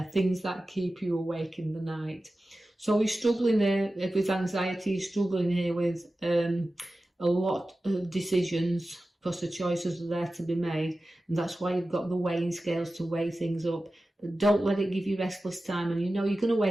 things that keep you awake in the night. So you're struggling there with anxiety, you're struggling here with a lot of decisions, because the choices are there to be made. And that's why you've got the weighing scales to weigh things up. But don't let it give you restless time. And you know you're going to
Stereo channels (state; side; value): normal; both; correlation 0.94